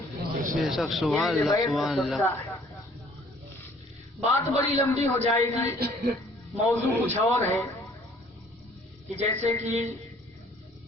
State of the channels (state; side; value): normal; both; correlation 0.57